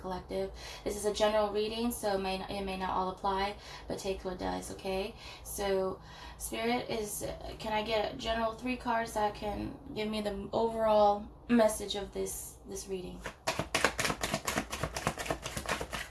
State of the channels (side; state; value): both; identical; correlation 1.00